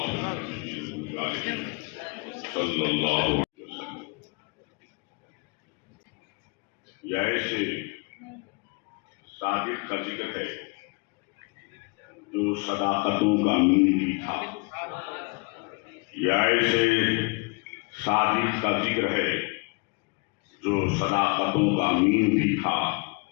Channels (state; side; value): quieter; right; 31.8 dB